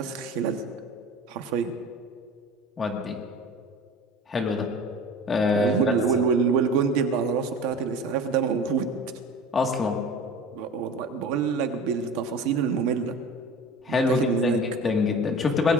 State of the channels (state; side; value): normal; both; correlation 0.38